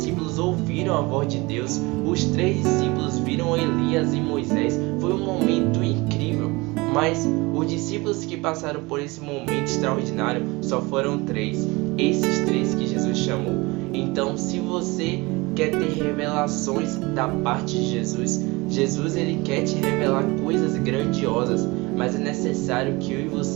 ouviram a voz de Deus. Os 3 discípulos viram Elias e Moisés. Foi um momento incrível. Mas os discípulos que passaram por esse momento extraordinário só foram 3. Esses 3 que Jesus chamou. Então, se você quer ter revelações da parte de Jesus, Jesus ele quer te revelar coisas grandiosas, mas é necessário que eu e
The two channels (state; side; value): quieter; left; 23.9 dB